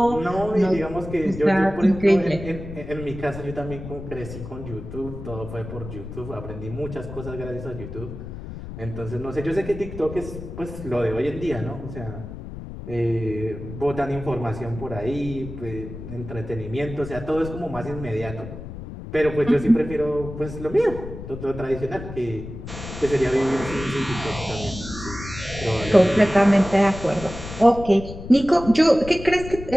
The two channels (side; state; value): left; noise; rumble, 11 dB below the sound